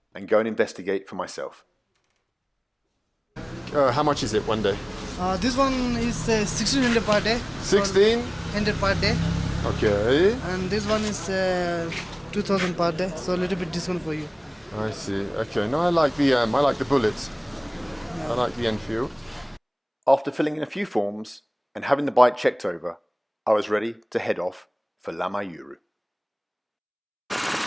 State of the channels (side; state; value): both; identical; correlation 1.00